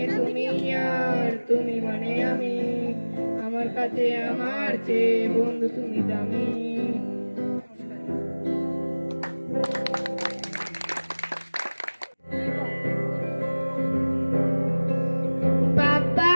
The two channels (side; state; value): both; inverted; correlation -1.00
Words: তুমি আর তুমি মানে আমি, আমার কাছে আমার চেয়ে বন্ধু তুমি দামি। पापा